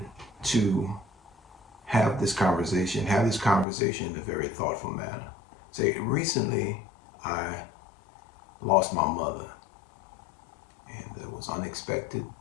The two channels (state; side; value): drops out; right; at 3.7 s